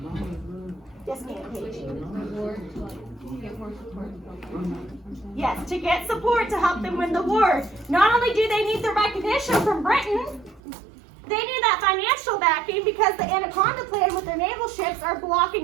Yes, ma'am, Paige. Yes, to get support to help them win the war. Not only do they need the recognition from Britain, they need that financial backing because the Anaconda Plan with their naval ships are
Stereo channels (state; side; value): drops out; left; at 10.6 s